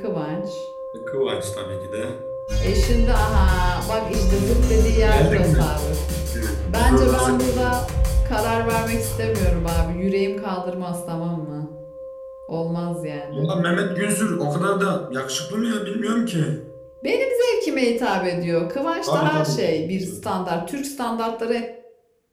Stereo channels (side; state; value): both; identical; correlation 1.00